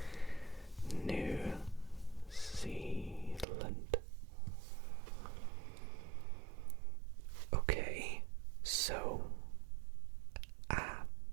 New Zealand. Okay, so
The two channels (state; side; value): drops out; left; at 3.5 s